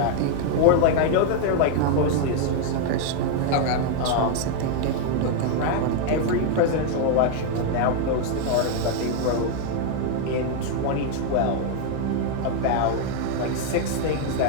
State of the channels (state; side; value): different; both; correlation 0.00